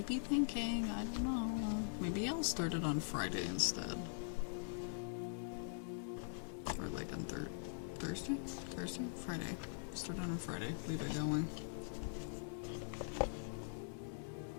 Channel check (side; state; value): right; silent; digital silence